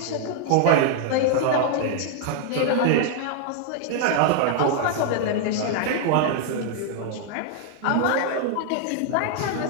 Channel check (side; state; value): both; different; correlation 0.00